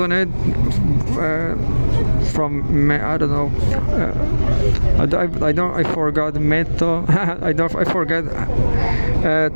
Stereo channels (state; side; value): inverted; both; correlation -1.00